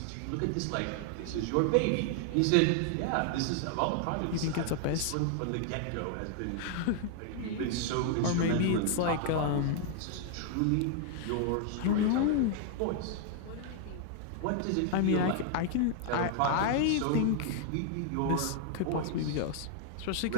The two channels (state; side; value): different; both; correlation 0.00